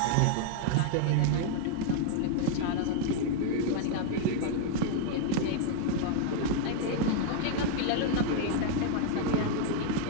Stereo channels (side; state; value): both; different; correlation 0.00